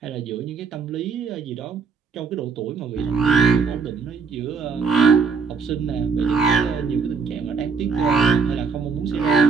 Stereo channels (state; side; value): quieter; left; 5.3 dB